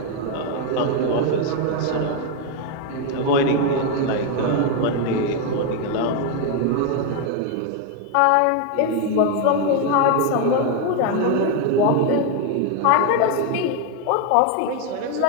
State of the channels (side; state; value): both; different; correlation 0.01